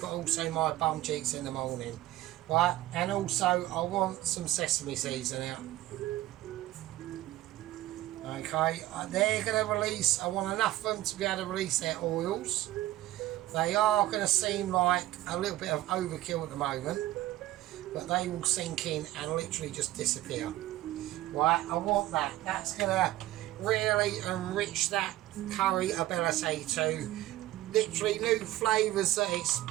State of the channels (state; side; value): quieter; left; 15.6 dB